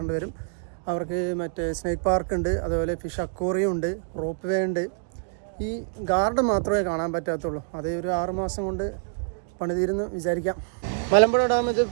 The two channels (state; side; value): silent; left; digital silence